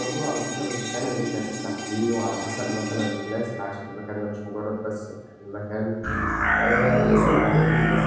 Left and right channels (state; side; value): identical; both; correlation 1.00